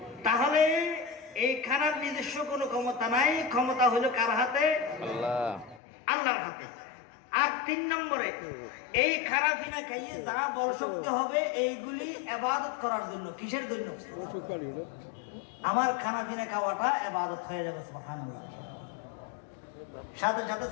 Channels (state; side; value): drops out; right; at 5.8 s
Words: তাহলে এই খানার নিজস্ব কোনো ক্ষমতা নাই, ক্ষমতা হলো কার হাতে? আল্লাহ, আল্লাহর হাতে। আর 3 নম্বরে, এই খানা পিনা খাইয়ে যা বল শক্তি হবে এইগুলি ইবাদত করার জন্য। কিসের জন্য? আমার খানা পিনা খাওয়াটা ইবাদত হয়ে যাবে। সুবহানাল্লাহ। সাথে সাথে